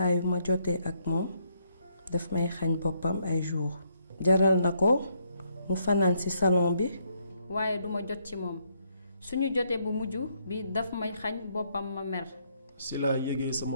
yu ma jotee ak moom daf may xañ boppam ay jours. Jaral na ko mu fanaan ci salon bi. waaye duma jot ci moom suñu jotee bu mujj bi daf may xañ boppam ma mer. si laa yégee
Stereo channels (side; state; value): both; inverted; correlation -0.73